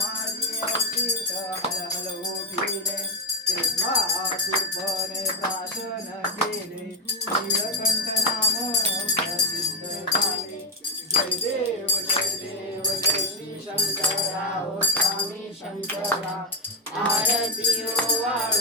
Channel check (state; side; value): normal; both; correlation 0.06